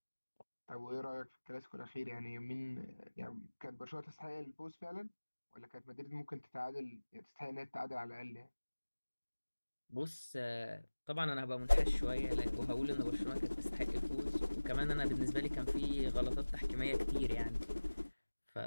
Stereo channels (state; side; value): inverted; both; correlation -1.00